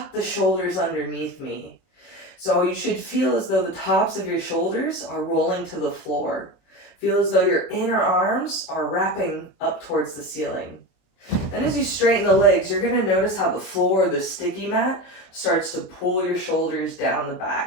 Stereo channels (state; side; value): late; right; 23 ms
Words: the shoulders underneath me. So you should feel as though the tops of your shoulders are rolling to the floor. Feel as though your inner arms are wrapping up towards the ceiling. Then as you straighten the legs, you're going to notice how the floor, the sticky mat, starts to pull your shoulders down the